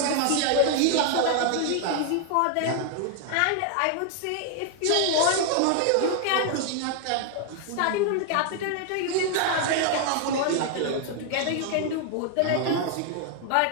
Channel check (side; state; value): both; different; correlation 0.00